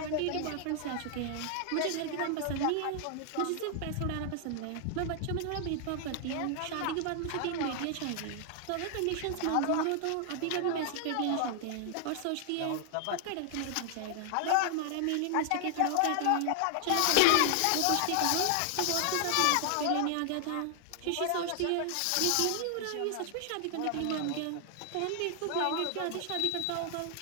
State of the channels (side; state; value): both; different; correlation 0.00